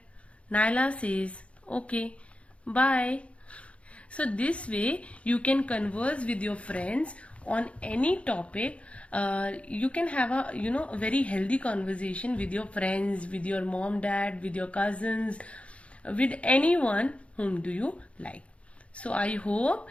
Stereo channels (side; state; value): right; late; 0.062 ms